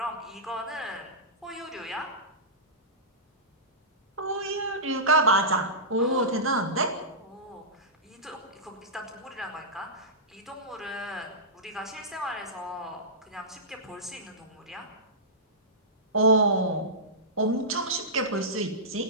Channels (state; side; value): normal; both; correlation -0.18